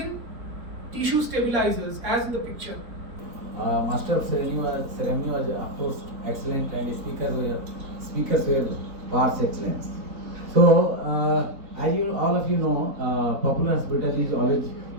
tissue stabilizers, as in the picture. Master of ceremony was of course excellent, and speakers were par excellence. So as you all of you know, Popular Hospital is always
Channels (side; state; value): left; late; 4.1 ms